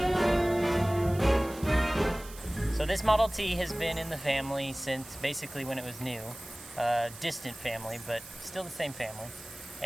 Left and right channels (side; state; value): right; noise; hiss, 16 dB below the sound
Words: So this Model T has been in the family since basically when it was new. Distant family, but still the same family.